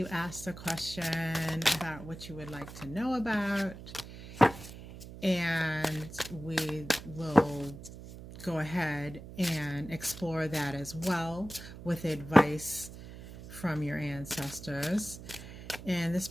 ask the question about what you would like to know about, and we will go ahead and explore that as well with advice from your ancestors. In this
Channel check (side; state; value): right; noise; hum, 14 dB below the sound